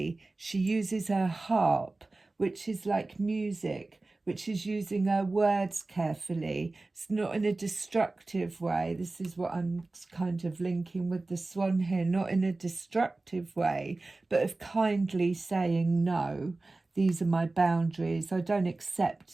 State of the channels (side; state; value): left; quieter; 3.2 dB